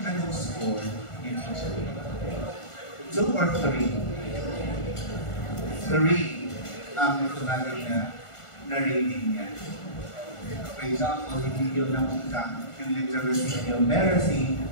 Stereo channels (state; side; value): late; right; 1.4 ms